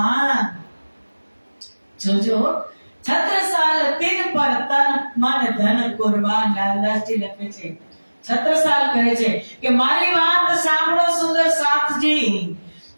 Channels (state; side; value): inverted; both; correlation -1.00